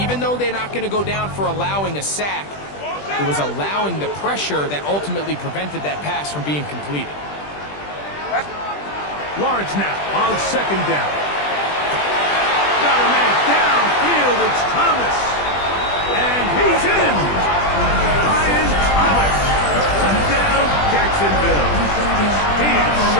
though they're not going to go down for allowing a sack, it was allowing the pressure that ultimately prevented that pass from being completed. Lawrence now on second down. Got a man downfield. It's Thomas. And he's in. Ryan Thomas. Touchdown, Jacksonville. He is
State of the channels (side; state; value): right; late; 20 ms